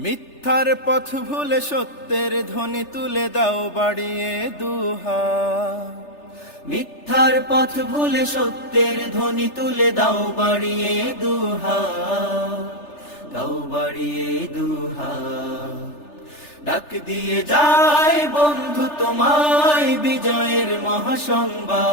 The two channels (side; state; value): right; late; 3.3 ms